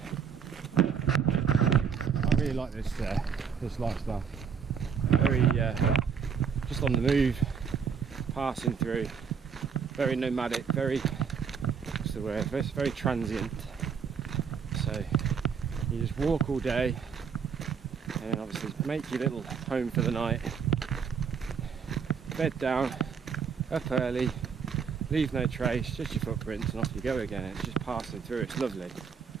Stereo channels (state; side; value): quieter; left; 6.7 dB